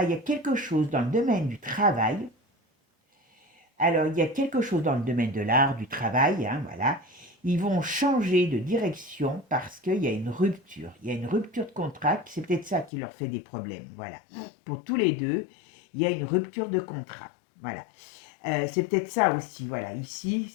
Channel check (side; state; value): right; drops out; at 12.9 s